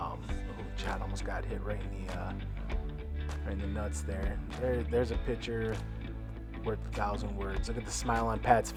John almost got hit right in the nuts there. There's a picture worth 1,000 words. Look at the smile on Pat's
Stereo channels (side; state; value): both; identical; correlation 1.00